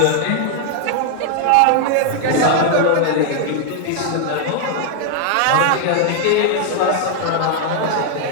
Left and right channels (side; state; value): both; different; correlation 0.00